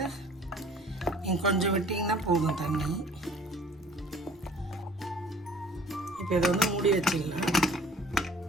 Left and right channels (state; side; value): normal; both; correlation 0.51